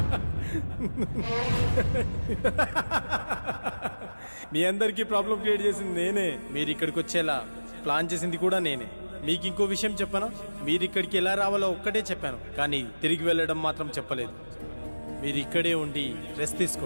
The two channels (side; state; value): both; inverted; correlation -1.00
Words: మీ అందరికీ ప్రాబ్లం క్రియేట్ చేసింది నేనే. మీరు ఇక్కడికి వచ్చేలా ప్లాన్ చేసింది కూడా నేనే. మీకు ఇంకో విషయం చెప్పనా? మీరు ఇక్కడికి ఎలా రావాలో ఒక్కటే చెప్పాను, కానీ తిరిగి వెళ్ళడం మాత్రం చెప్పలేదు. మీరు ఇక్కడే ఉండి రెస్ట్